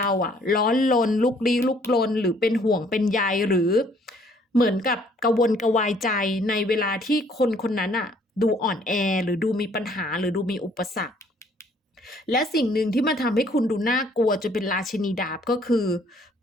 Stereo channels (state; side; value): normal; both; correlation 0.61